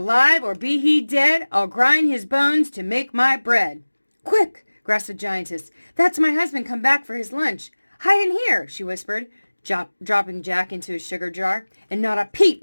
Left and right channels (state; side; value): inverted; both; correlation -1.00